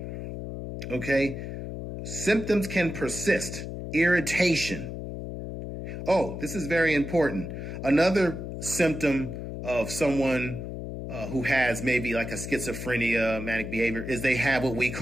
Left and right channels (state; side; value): noise; left; hum, 7 dB below the sound